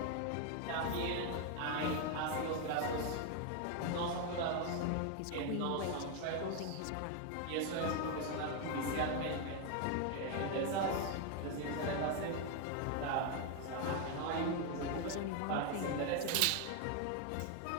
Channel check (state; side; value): different; both; correlation 0.01